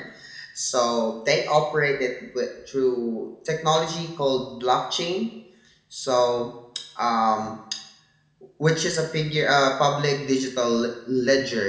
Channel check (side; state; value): both; identical; correlation 1.00